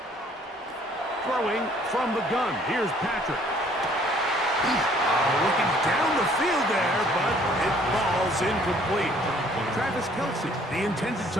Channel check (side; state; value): both; normal; correlation 0.59